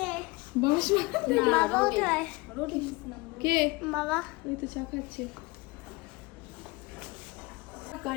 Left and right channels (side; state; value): right; quieter; 24.3 dB